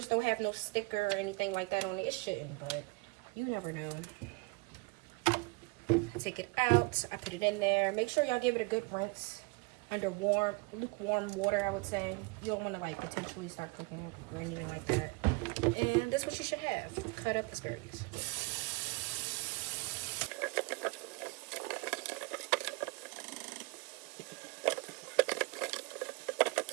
don't have no sticker or anything like that on it. It shouldn't, but you never know. I take it out. I put it in there. Make sure y'all give it a good rinse under lukewarm water, I would say. You don't want to like potentially start cooking it or anything like that. And that's what you should have. Cut up asparagus.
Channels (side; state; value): left; quieter; 27.4 dB